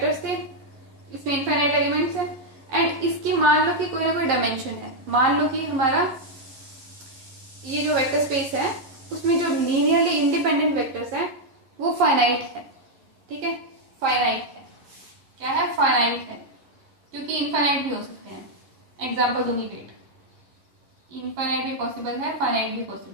थे, इसमें इनफाइनाइट एलिमेंट्स है, एंड इसकी मान लो कि कोई ना कोई डायमेंशन है, मान लो कि हमारा ये जो वेक्टर स्पेस है उसमें जो लीनियरली इंडिपेंडेंट वेक्टर्स है वो फाइनाइट है, ठीक है, फाइनाइट है। क्या है? फाइनाइट है, क्योंकि इनफाइनाइट भी हो सकते हैं। एग्जाम्पल दूंगी, वेट, इनफाइनाइट भी पॉसिबल है, फाइनाइट भी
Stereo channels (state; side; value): late; left; 11 ms